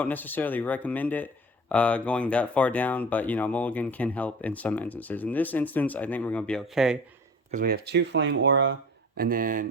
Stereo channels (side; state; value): both; normal; correlation 0.41